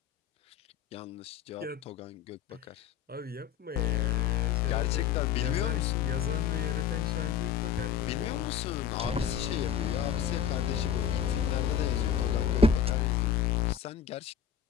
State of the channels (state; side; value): quieter; right; 8.3 dB